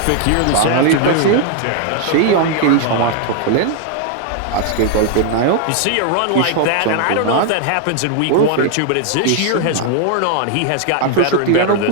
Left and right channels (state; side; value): different; both; correlation 0.00